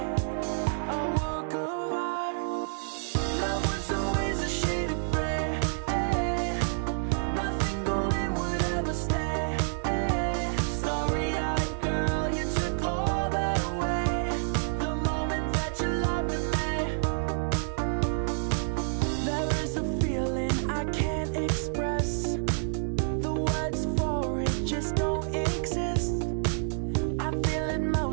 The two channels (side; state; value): left; silent; 59 dB below the other